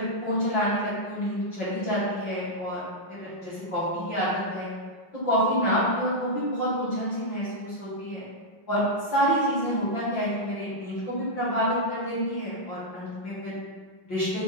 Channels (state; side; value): late; right; 5.8 ms